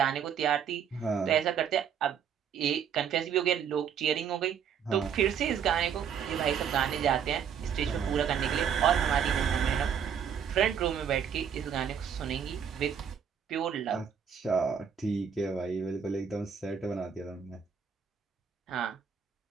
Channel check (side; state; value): left; quieter; 7.7 dB